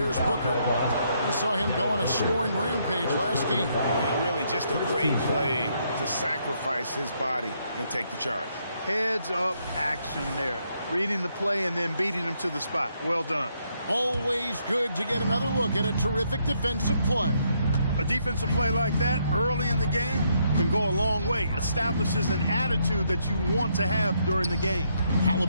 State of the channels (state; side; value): inverted; both; correlation -0.74